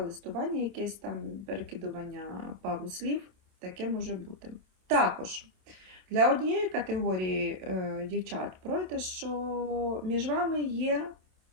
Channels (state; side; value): late; left; 27 ms